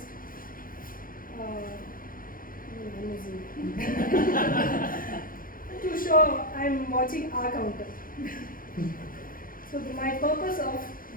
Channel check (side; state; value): right; late; 0.41 ms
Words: To show I'm watching R counter. So my purpose of